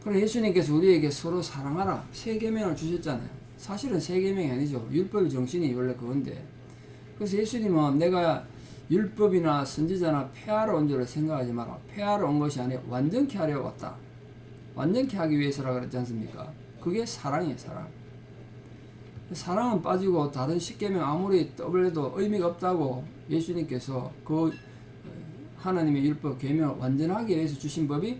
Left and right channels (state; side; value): identical; both; correlation 1.00